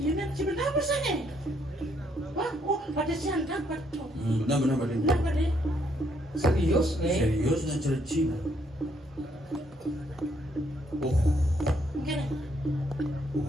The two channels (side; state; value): both; normal; correlation 0.71